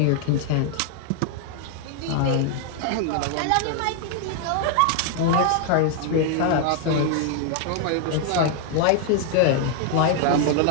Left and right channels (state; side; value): different; both; correlation 0.00